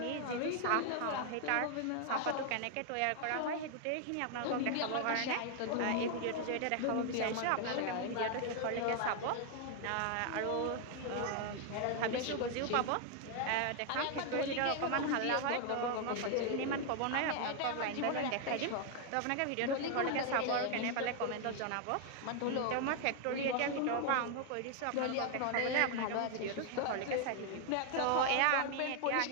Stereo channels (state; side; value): different; both; correlation 0.00